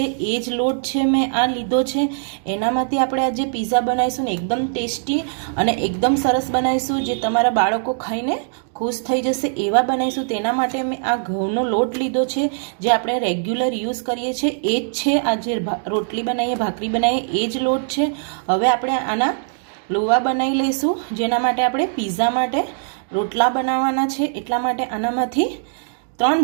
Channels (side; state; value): left; silent; digital silence